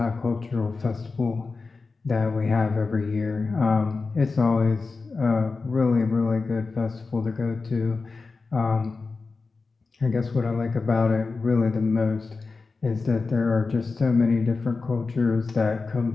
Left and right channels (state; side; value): quieter; right; 4.1 dB